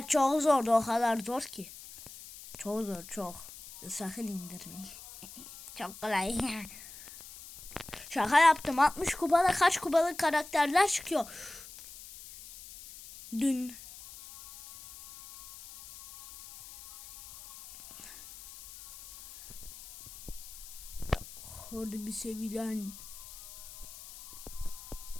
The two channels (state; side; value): noise; left; hiss, 16 dB below the sound